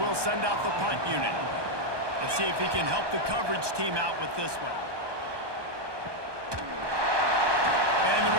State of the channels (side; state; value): left; late; 1.2 ms